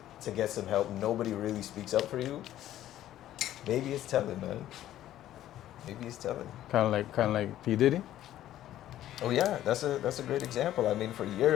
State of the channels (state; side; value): quieter; right; 12.9 dB